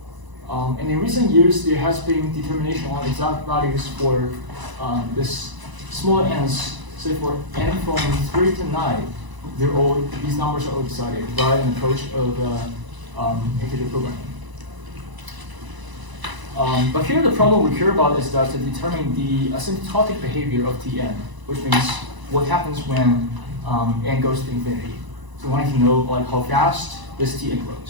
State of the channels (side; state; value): left; late; 1.0 ms